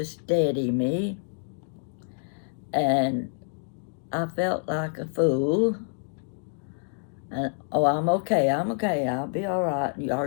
steady me, and I felt like a fool. And, "Oh, I'm okay, I'll be all right. Are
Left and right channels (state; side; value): silent; right; digital silence